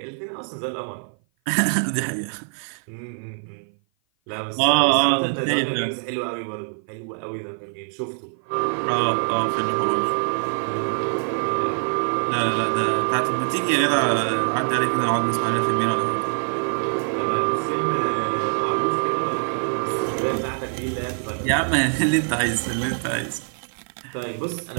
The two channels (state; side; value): silent; left; 55 dB below the other